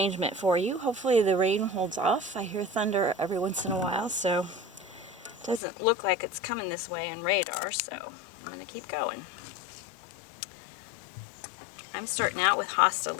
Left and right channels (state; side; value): drops out; right; at 5.6 s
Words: for you. Hopefully the rain holds off. I hear thunder every once in a while, so it doesn't look like it's coming this way on radar, so I'm going to keep going. I'm starting out with Hosta